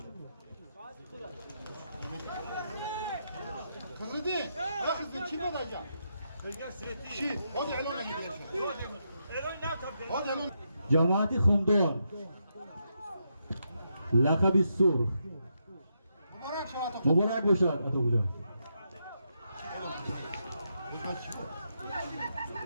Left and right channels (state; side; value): inverted; both; correlation -0.82